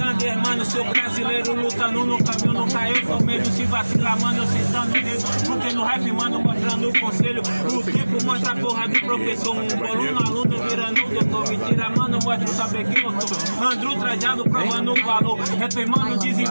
mano, sou brasileiro. Lutando no caminho, nunca eu sou medo. Se vacilar, mano, eu sentando dedo. Porque no rap, mano, mostrando o conselho. O tempo mostra a porra do professor. Um boluno, aluno, virando o doutor. Mentira, mano, mostra o saber quem eu sou. Andro trajado, provando o valor. Rap, mano,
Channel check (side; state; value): both; inverted; correlation -1.00